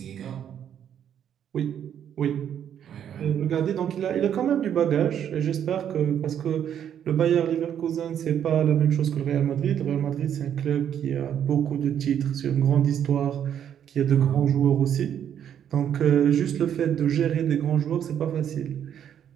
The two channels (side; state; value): left; quieter; 9.3 dB